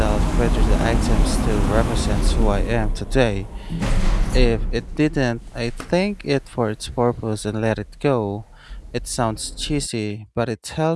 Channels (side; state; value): both; identical; correlation 1.00